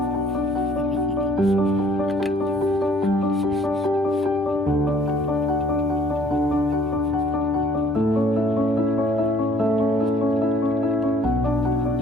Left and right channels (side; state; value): both; normal; correlation 0.58